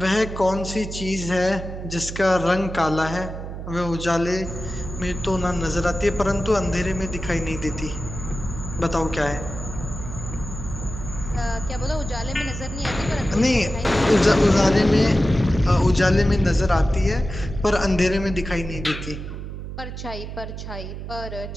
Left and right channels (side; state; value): right; noise; hum, 8 dB below the sound